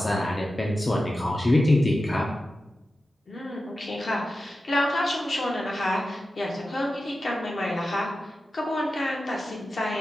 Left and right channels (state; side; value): normal; both; correlation 0.93